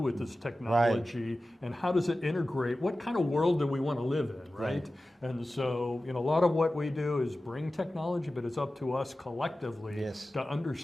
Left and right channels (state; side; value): normal; both; correlation 0.95